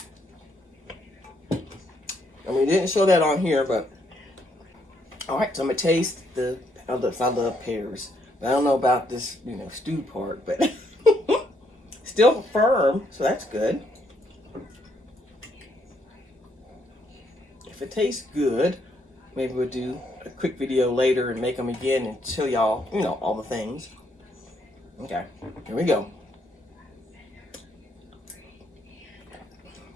I mean, didn't show that on here, but all right. So I'm gonna taste I love pears. I don't know about this, stew part, but still firm, so that's good. If it tastes good, maybe we'll do a quick video later and make them again and show y'all, all the things. Okay, here we go.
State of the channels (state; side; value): normal; both; correlation 0.73